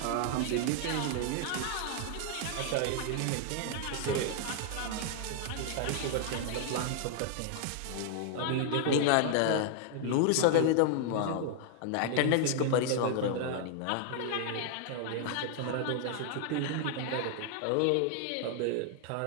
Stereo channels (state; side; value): different; both; correlation -0.01